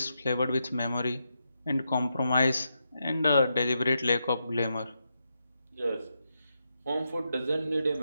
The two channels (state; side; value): inverted; both; correlation -0.84